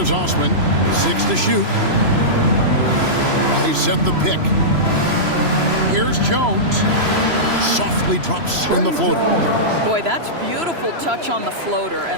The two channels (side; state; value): left; late; 3.0 ms